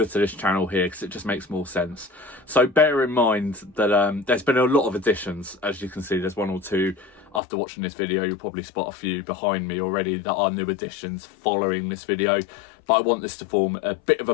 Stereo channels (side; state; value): right; drops out; at 7.4 s